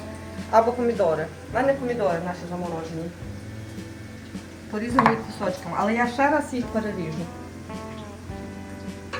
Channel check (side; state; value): both; identical; correlation 1.00